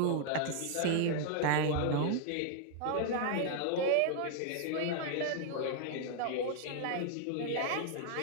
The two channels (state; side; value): different; both; correlation -0.01